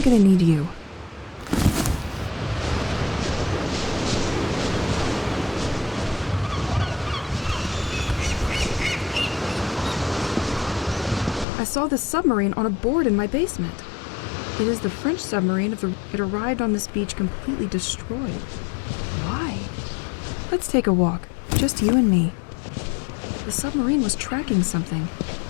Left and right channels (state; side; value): drops out; right; at 11.5 s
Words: need you. saw this submarine on a board in my basement. It is the French submarine it arrived on this beach completely destroyed. Why? Let's take a walk, just you and me. The submarine was tracking something.